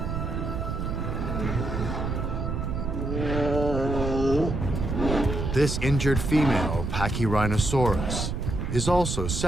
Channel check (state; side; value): noise; right; rumble, 2 dB below the sound